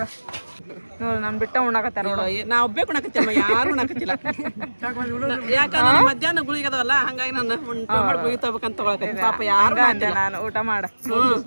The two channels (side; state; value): both; inverted; correlation -1.00